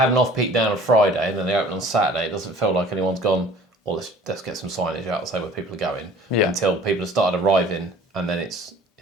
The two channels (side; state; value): both; normal; correlation 0.48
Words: an off-peak down on Friday and then they open on Saturday, it doesn't feel like anyone's gone, well, let's get some signage out and say where people are going. Until people have started arriving, and then it's